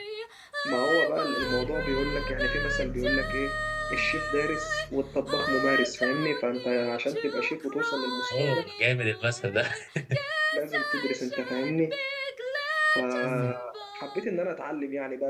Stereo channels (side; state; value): both; identical; correlation 1.00